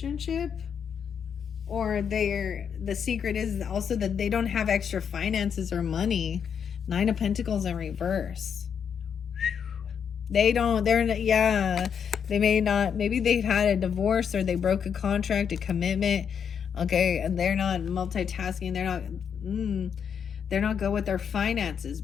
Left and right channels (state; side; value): quieter; right; 7.4 dB